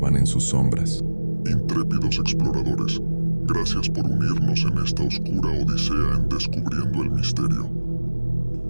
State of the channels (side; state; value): both; inverted; correlation -1.00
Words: en sus sombras. Intrépidos exploradores, gracias por unirnos en esta oscura odisea en Descubriendo el Misterio.